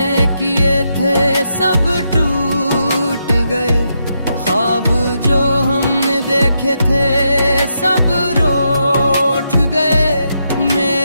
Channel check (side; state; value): both; inverted; correlation -0.82